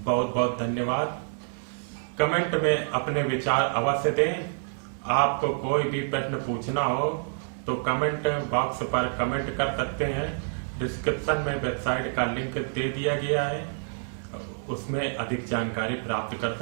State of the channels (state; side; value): silent; left; digital silence